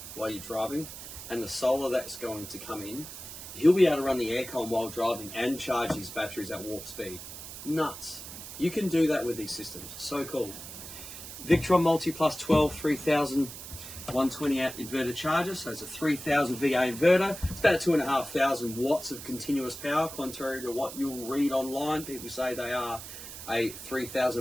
while you're driving and the solar that's going to come in, he'll be able to run the aircon while driving and charge his batteries at warp speed. Nuts. You can do that with these systems. So cool. Victron Multiplus 12 3000 120 amp inverter charger, so it's a 3000 VA inverter. It's about 2,500 watts of continuous power, contrary to what you'll read online. People say they are a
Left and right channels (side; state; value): right; noise; hiss, 11 dB below the sound